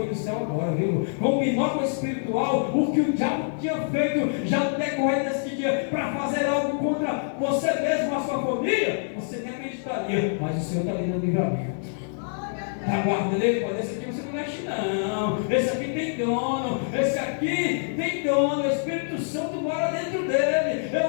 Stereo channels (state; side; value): silent; right; 61 dB below the other